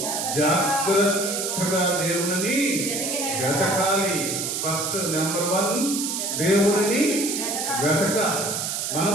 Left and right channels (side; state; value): right; noise; hiss, 2 dB below the sound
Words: జాగ్రత్తగా దేవుని వెతకాలి. ఫస్ట్ నెంబర్ 1 దేవుని వెతకాలి.